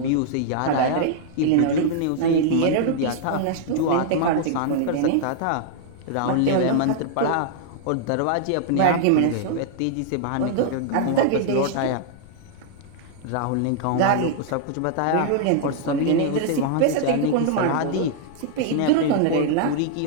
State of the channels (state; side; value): different; both; correlation -0.01